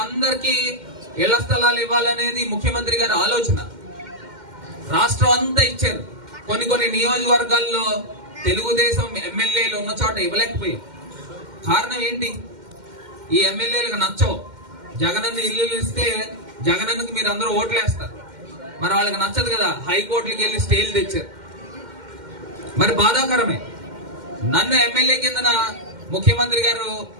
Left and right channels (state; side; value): late; left; 2.1 ms